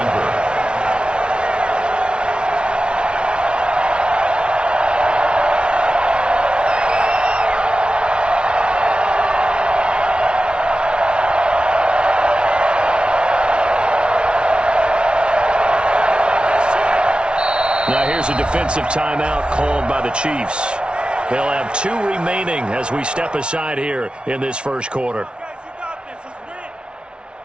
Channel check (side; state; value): left; late; 0.057 ms